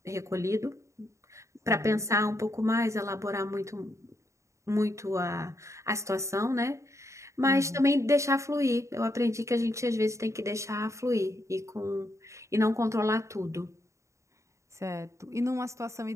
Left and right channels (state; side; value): late; left; 0.14 ms